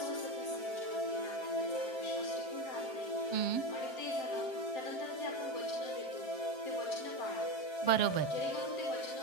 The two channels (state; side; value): late; right; 7.3 ms